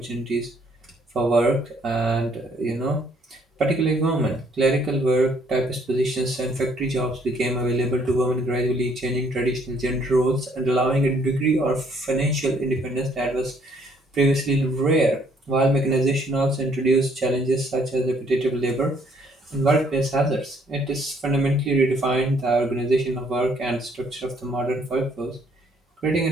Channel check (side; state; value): both; normal; correlation 0.65